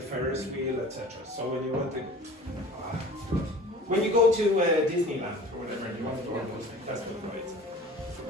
Ferris wheel, etc. So when you go to Disneyland or whatever, and you want to go on those things, that's what rides.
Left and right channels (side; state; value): both; normal; correlation 0.43